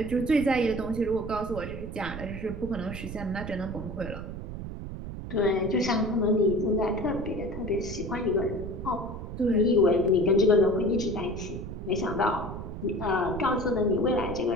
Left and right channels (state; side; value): noise; right; rumble, 8 dB below the sound